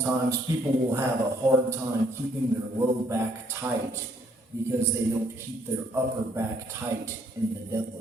people will have a hard time keeping their low back tight because they don't keep their upper back tight in the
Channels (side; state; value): both; normal; correlation 0.67